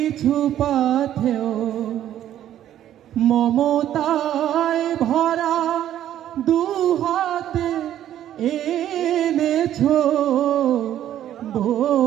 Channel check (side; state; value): left; quieter; 11.6 dB